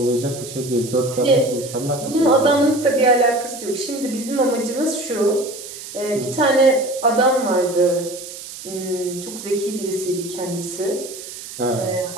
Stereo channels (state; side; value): noise; right; hiss, 12 dB below the sound